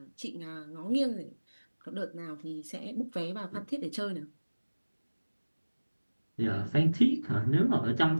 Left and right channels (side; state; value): both; inverted; correlation -1.00